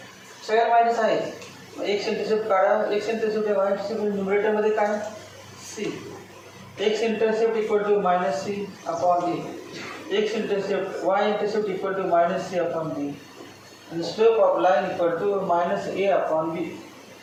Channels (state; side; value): identical; both; correlation 1.00